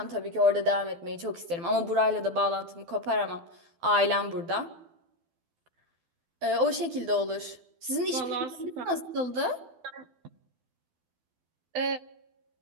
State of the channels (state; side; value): late; left; 12 ms